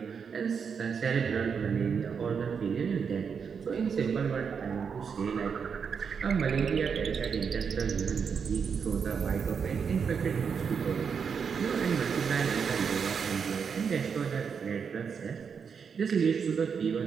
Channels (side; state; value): left; quieter; 6.4 dB